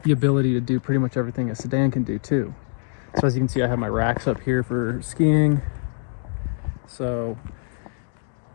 ability to do pretty much everything a sedan can do too. So as you can see, I have my racks up here for skiing. So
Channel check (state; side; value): silent; right; 60 dB below the other